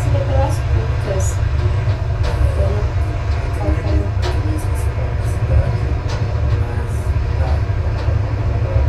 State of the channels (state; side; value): identical; both; correlation 1.00